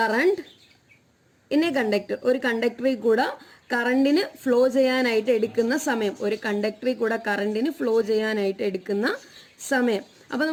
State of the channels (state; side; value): identical; both; correlation 1.00